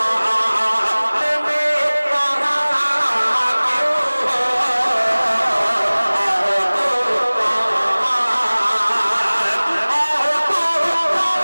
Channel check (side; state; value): both; inverted; correlation -1.00